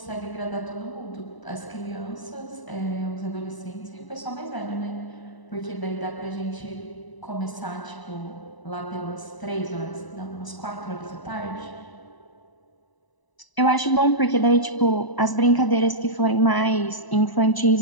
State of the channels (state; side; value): late; right; 1.0 ms